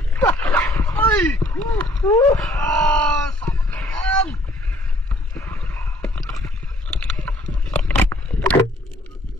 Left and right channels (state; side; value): normal; both; correlation 0.60